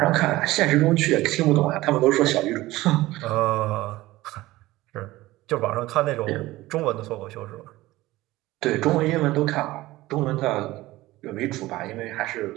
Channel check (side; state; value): left; quieter; 17.9 dB